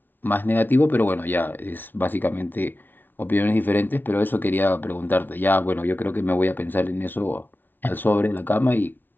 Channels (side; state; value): right; late; 0.092 ms